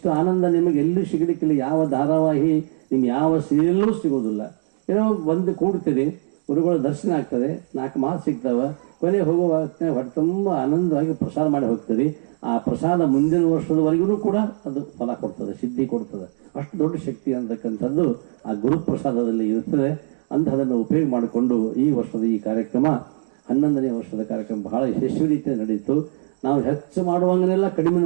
ಆನಂದ ನಿಮಗೆ ಎಲ್ಲೂ ಸಿಗಲಿಕ್ಕಿಲ್ಲ. ಯಾವ ಧಾರಾವಾಹಿ, ನಿಮ್ಗೆ ಯಾವ ಸೀರಿಯಲ್ಲೂ ಸಿಗೋದಿಲ್ಲ. ಏನೋ ಬಂದು ಕೂಡ್ತೀರಿ, ಗುರುಗಳ ದರ್ಶನ ಆಗ್ತದೆ, 4 ಮಾತು ಸಿಗ್ತಾವ, ಕೊನೆ ಹೋಗುವ ಹೊಟ್ಟೆ ತುಂಬ ಆನಂದವಾಗಿ ಪ್ರಸಾದ ಮಾಡಿ ಹೋಗ್ತೀರಿ. ಆ ಪ್ರಸಾದ ಮುಂದಿನ ವರ್ಷದವರೆಗೂ ಕೂಡ ಅದು ಫಲ ಕೊಡ್ತದೆ, ಸಿದ್ಧಿ ಕೊಡ್ತದೆ. ಅಷ್ಟು ದೊಡ್ಡ ಶಕ್ತಿ ಅಂತಕ್ಕಂಥದ್ದು ಆ ಗುರುಪ್ರಸಾದದಲ್ಲಿ ಇರ್ತದೆ. ಅಂತ ಅದನ್ನು ಉಪಯೋಗ ಮಾಡಿಕೊಂಡು ಈ ವರ್ಷದ ಈ ಕಾರ್ಯಕ್ರಮ 11ನೇ ವರ್ಷದ ಕಾರ್ಯಕ್ರಮ ಬಹಳ ಯಶಸ್ವಿ ರೀತಿಯಲ್ಲಿ ನಡೆಯಿತು. ನಾವು ಹೆಚ್ಚು ಮಾಡುವಂಗಿಲ್ಲ, ಕಡಿಮೆನೂ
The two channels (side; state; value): left; silent; digital silence